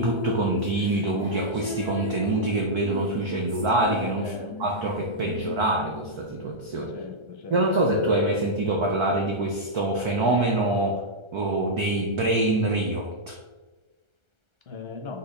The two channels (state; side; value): late; left; 1.3 ms